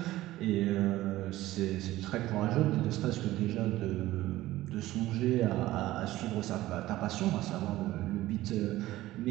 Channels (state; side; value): quieter; left; 16.2 dB